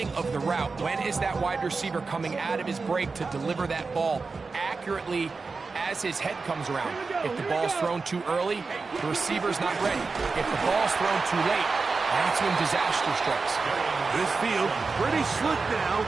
of the route. When is that wide receiver coming out of his break to deliver that ball accurately as his head comes around? If the ball's thrown too early, the receiver's not ready. If the ball's thrown too late, that's when disaster strikes. This field pretty slick now.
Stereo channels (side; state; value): left; quieter; 4.3 dB